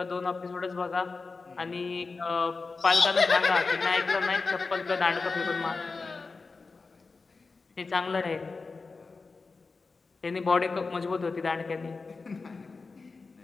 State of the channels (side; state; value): right; quieter; 4.2 dB